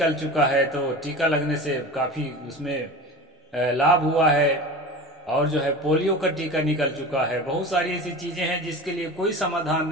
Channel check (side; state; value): both; normal; correlation 0.32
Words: चुका है, तो टीका लगने से काफी उसमें लाभ हुआ है। और जो है पोलियो का टीका निकल चुका है। बहुत सारी ऐसी चीजें हैं जिसके लिए कोई समाधान